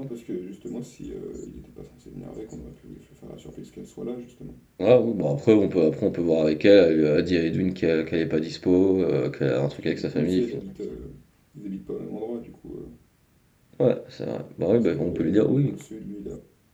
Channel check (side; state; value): both; identical; correlation 1.00